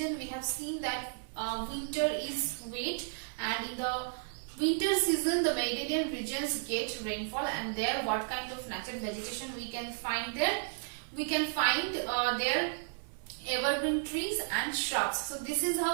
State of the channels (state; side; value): silent; left; 55 dB below the other